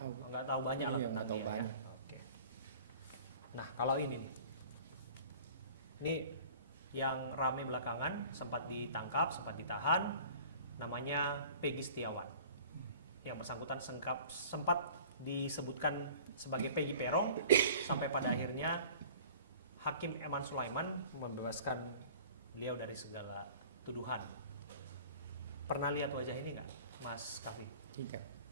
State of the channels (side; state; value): both; inverted; correlation -0.46